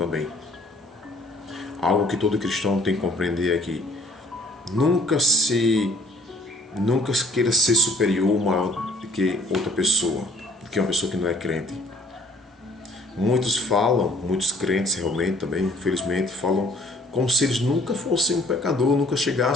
Algo que todo cristão tem que compreender é que nunca queira ser superior ou maior do que outra pessoa, do que uma pessoa que não é crente. Muitos crentes realmente também, infelizmente, falam como se eles nunca fossem um pecador, nunca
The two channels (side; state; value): both; normal; correlation 0.56